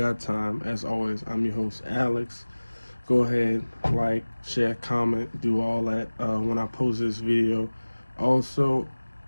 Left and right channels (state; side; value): inverted; both; correlation -1.00